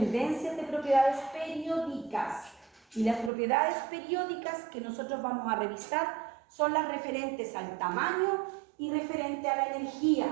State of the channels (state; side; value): drops out; left; at 3.3 s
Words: de propiedades periódicas. Y las propiedades periódicas que nosotros vamos a revisar son las referentes al tamaño y referente a la energía.